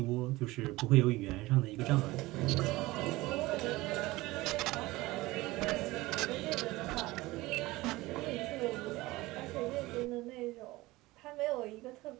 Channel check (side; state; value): left; quieter; 19.8 dB